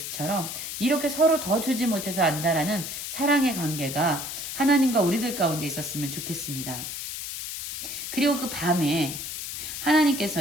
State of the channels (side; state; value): left; noise; hiss, 6 dB below the sound